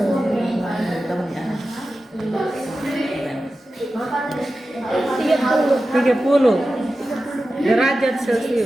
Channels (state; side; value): normal; both; correlation 0.93